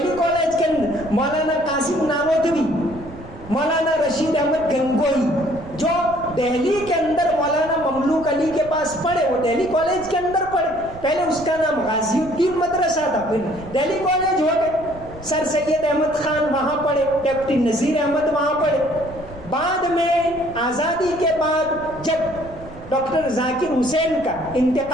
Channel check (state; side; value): noise; right; rumble, 17 dB below the sound